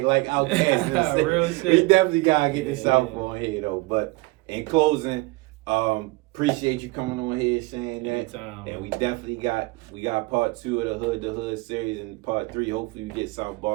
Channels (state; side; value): quieter; left; 23.6 dB